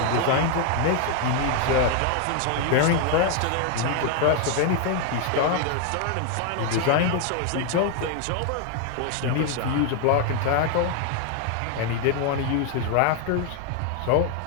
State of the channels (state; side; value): different; both; correlation 0.00